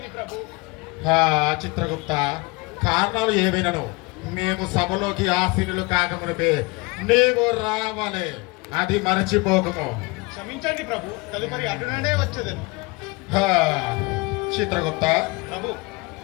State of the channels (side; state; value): right; quieter; 25.7 dB